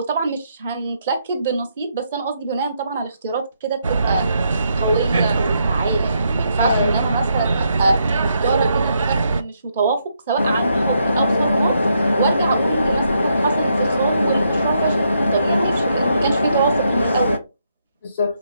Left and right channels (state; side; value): inverted; both; correlation -0.77